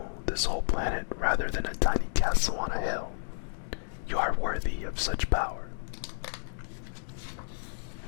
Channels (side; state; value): right; silent; digital silence